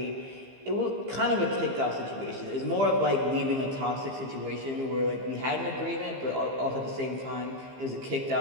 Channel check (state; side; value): late; left; 15 ms